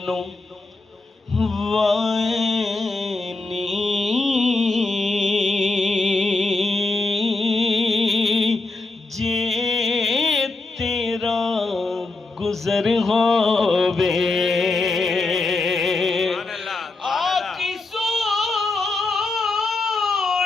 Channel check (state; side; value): quieter; right; 3.4 dB